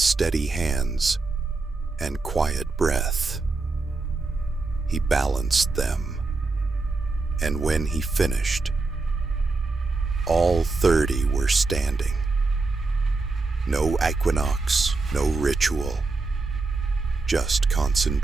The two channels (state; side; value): quieter; left; 3.7 dB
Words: hands and quiet breath. He balanced them, and when he finished, all 30 were standing. No equinox, no ritual, just